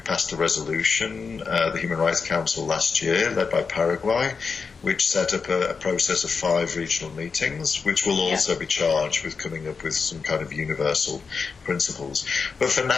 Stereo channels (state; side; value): quieter; right; 5.2 dB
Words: a resolution, the Human Rights Council last year, led by Paraguay, which set up a process of 5 regional meetings, which will also be charged with coming up with some kind of universal principles. But for